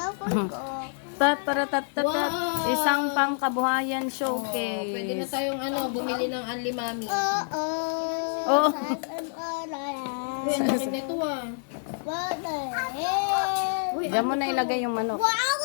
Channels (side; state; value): right; silent; digital silence